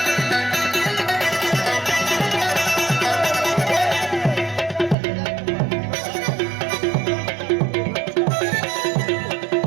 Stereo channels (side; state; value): left; drops out; at 5.0 s